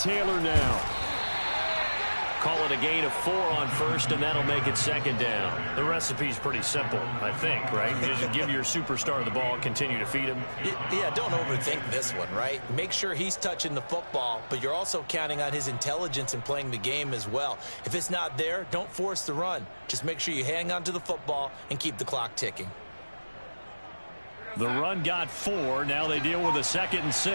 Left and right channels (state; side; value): inverted; both; correlation -1.00